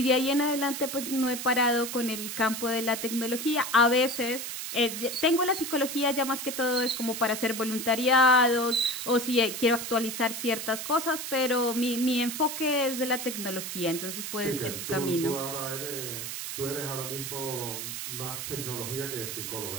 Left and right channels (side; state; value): right; noise; hiss, 6 dB below the sound